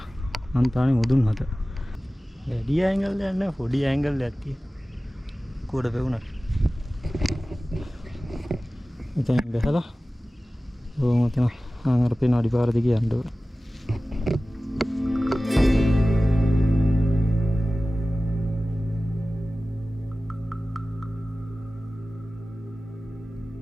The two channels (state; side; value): normal; both; correlation 0.96